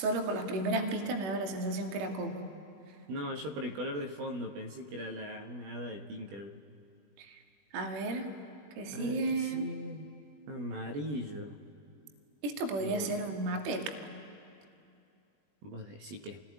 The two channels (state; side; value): late; left; 21 ms